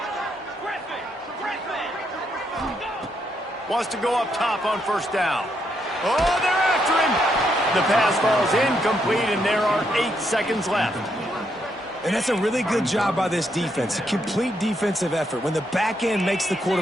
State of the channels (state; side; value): normal; both; correlation 0.77